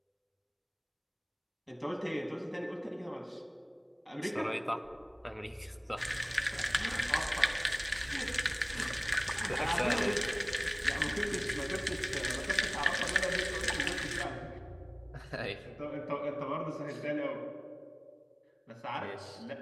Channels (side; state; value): both; identical; correlation 1.00